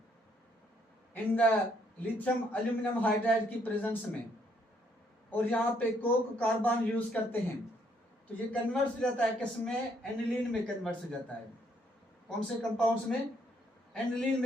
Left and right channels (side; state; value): both; normal; correlation 0.70